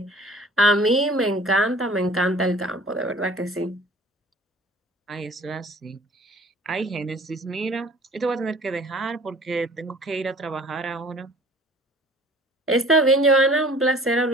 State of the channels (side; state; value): both; normal; correlation 0.49